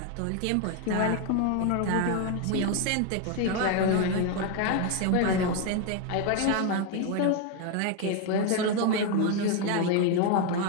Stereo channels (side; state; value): both; different; correlation 0.01